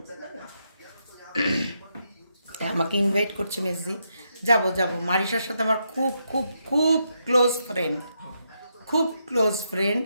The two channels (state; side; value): inverted; both; correlation -0.81